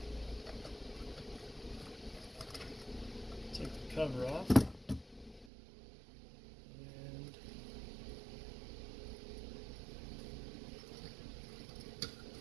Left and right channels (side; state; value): left; drops out; at 5.5 s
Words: take the cover off, and